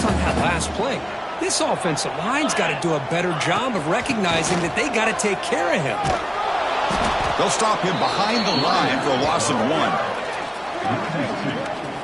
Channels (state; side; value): identical; both; correlation 1.00